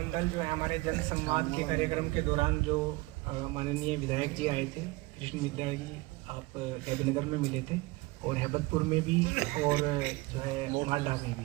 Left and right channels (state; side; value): quieter; left; 22.6 dB